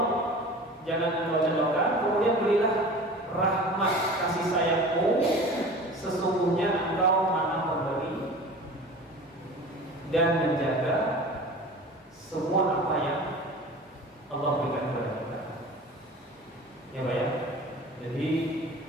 jangan Engkau jauhkan, kemudian berilah rahmat kasih sayang-Mu, sesungguhnya Engkau Maha Pemberi dan menjaga semua apa yang Allah berikan kepada kita. Ya Pak ya. Jadi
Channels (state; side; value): normal; both; correlation 0.39